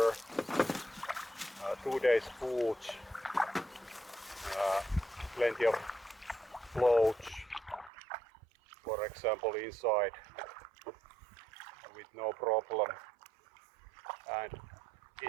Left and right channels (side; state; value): left; drops out; at 7.9 s